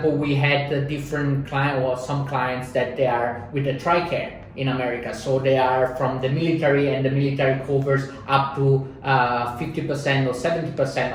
we had a different client or some clients that they are with the TRICARE in America. So they are from the military, and the military covers up to 50% or 70%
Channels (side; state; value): both; identical; correlation 1.00